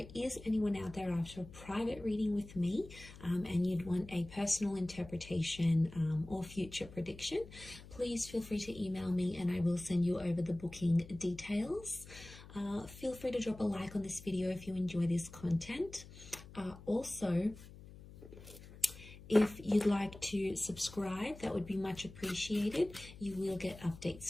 is anyone out there after a private reading with me and you'd want a personal interpretation or future prediction, please feel free to email me and I will send you over the booking details. Feel free to drop a like on this video if you enjoy this content. Also, if you'd like to subscribe, that would be much appreciated. You will get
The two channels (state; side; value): noise; left; hum, 17 dB below the sound